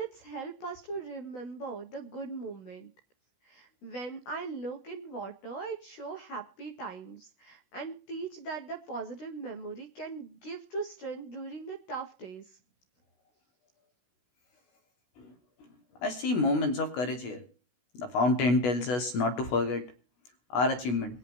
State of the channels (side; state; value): right; late; 16 ms